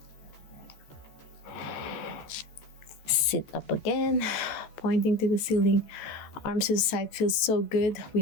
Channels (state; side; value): late; right; 14 ms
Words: Sit up again, pointing to the ceiling. Arms to the side feels so good. We